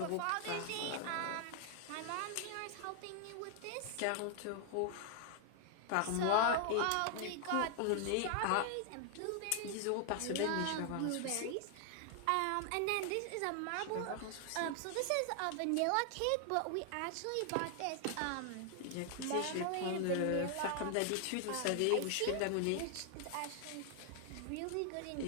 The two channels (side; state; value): both; different; correlation 0.00